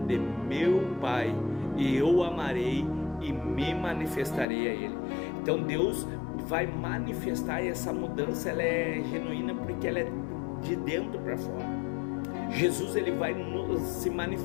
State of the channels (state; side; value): drops out; right; at 4.5 s